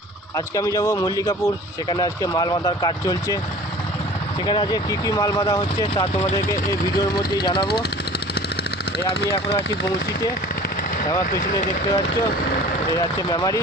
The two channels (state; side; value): normal; both; correlation 0.44